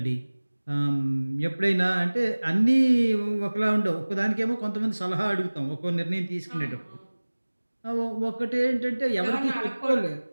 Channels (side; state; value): both; inverted; correlation -1.00